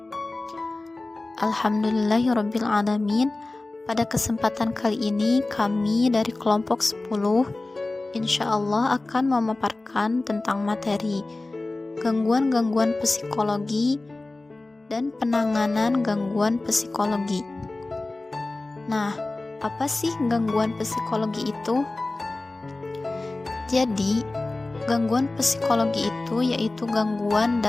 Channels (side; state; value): right; quieter; 3.1 dB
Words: Alhamdulillahirabbil alamin. Pada kesempatan kali ini kami dari kelompok 10 insyaallah akan memaparkan tentang materi gangguan-gangguan psikologi dan penanganan gangguan psikologi. Nah, apa sih gangguan psikologi itu? Jadi, gangguan psikologi itu yaitu gangguan